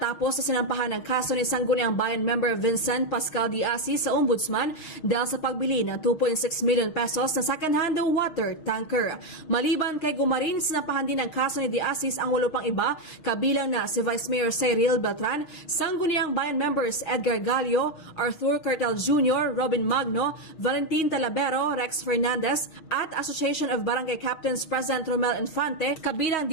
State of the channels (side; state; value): right; late; 6.3 ms